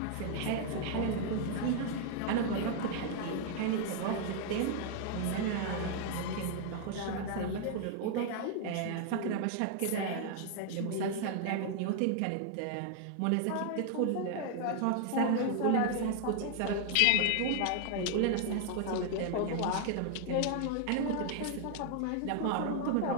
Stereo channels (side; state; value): both; different; correlation 0.00